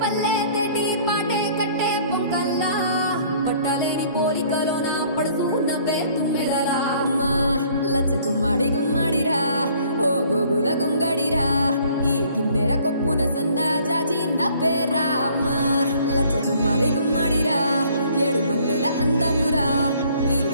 పల్లె గట్టి పాటే కట్టే పొంకల్లా పట్టలేని కోరికలోన పడుతూ నవ్వే తుమ్మెదలా మా లచ్చ గుమ్మాడి గుమ్మాడిరా ఓ గోగుల గుంగడిరా ఈ కిందెర కొప్పున సన్న జాజి నవ్వేరా మా లచ్చ గుమ్మాడి గుమ్మాడిరా ఏడు మల్లెల అందమురా ఈ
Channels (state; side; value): inverted; both; correlation -0.58